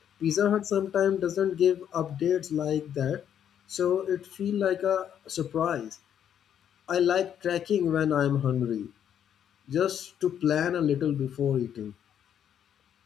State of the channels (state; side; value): quieter; right; 9.3 dB